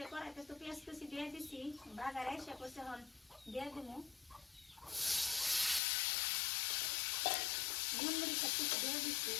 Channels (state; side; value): drops out; right; at 5.8 s